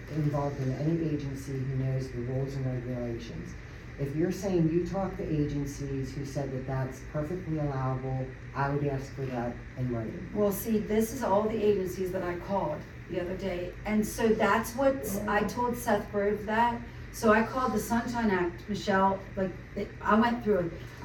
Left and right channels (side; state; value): both; identical; correlation 1.00